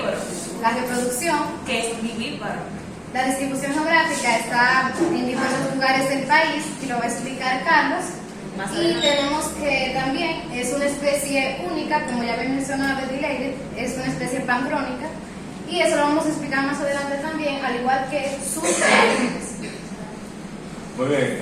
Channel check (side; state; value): both; identical; correlation 1.00